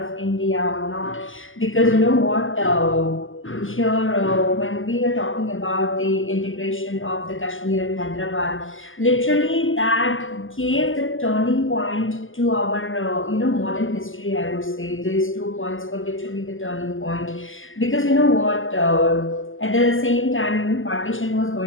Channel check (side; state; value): right; late; 0.58 ms